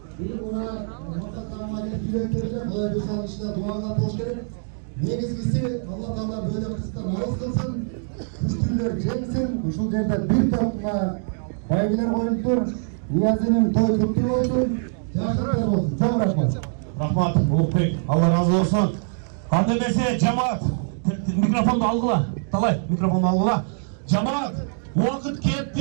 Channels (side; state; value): left; silent; digital silence